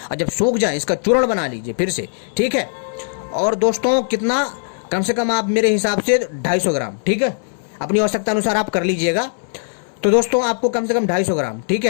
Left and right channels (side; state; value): right; silent; 60 dB below the other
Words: और जब सूख जाए इसका चूर्ण बना लीजिए फिर से, ठीक है। और दोस्तों कितना? कम से कम आप मेरे हिसाब से 250 ग्राम, ठीक है, अपनी आवश्यकता अनुसार आप कर लीजिएगा। तो दोस्तों आपको कम से कम 250 ग्राम, ठीक